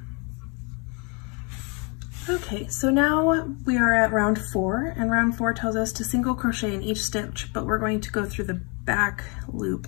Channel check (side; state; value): right; quieter; 33.1 dB